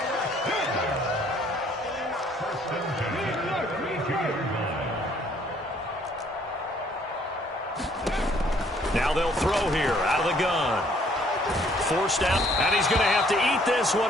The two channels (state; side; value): normal; both; correlation 0.62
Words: Now they'll throw here out of the gun. Forced out, and he's going to have to eat this one